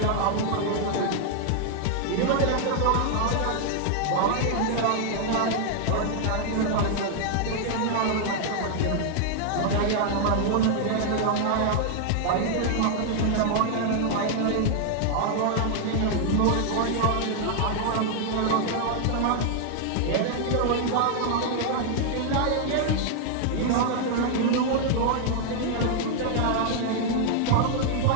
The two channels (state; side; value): different; both; correlation 0.00